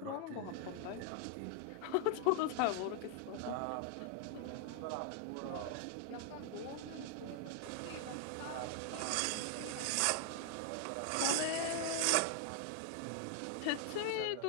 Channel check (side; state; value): both; different; correlation 0.00